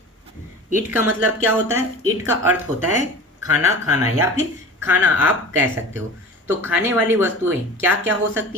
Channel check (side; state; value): both; normal; correlation 0.36